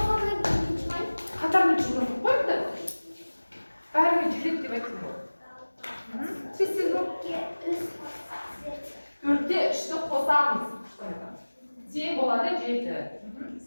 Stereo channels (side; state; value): both; inverted; correlation -1.00